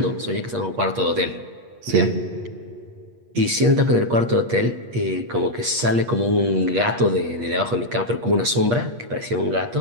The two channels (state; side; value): late; left; 8.4 ms